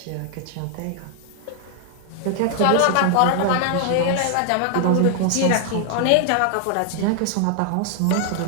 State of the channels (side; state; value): both; different; correlation 0.00